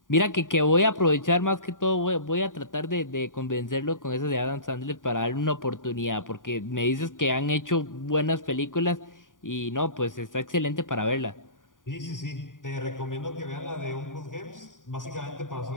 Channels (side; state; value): right; late; 0.88 ms